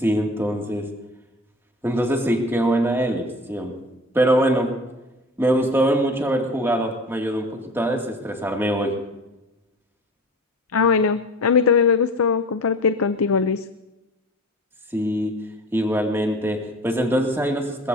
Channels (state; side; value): normal; both; correlation 0.39